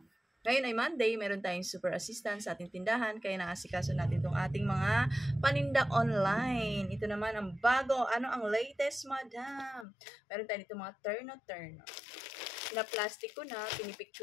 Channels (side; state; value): right; drops out; at 9.9 s